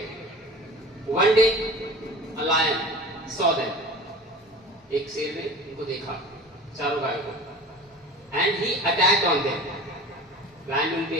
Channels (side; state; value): both; normal; correlation 0.39